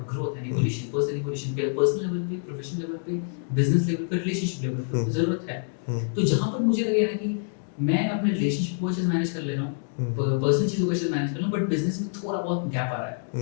growth and evolution, personal level पे, professional level पे, business level पे, relationship level पे जरूरत है. तो जहाँ पर मुझे लगे ना कि मैं अपने रिलेशनशिप को अच्छे से मैनेज कर ले रहा हूँ, पर्सनल चीज़ों को अच्छे से मैनेज कर रहा हूँ, बट बिजनेस में थोड़ा बहुत गैप आ रहा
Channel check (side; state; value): right; silent; digital silence